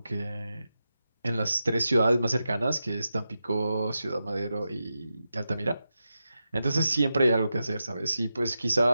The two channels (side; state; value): both; inverted; correlation -0.89